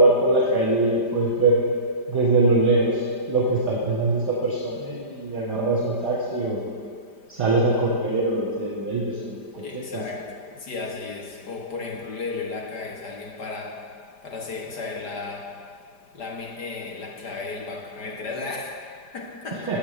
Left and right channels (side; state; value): right; late; 5.0 ms